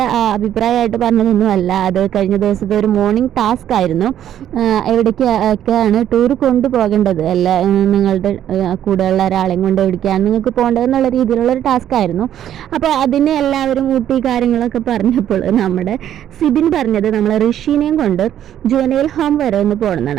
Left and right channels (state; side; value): quieter; left; 10.8 dB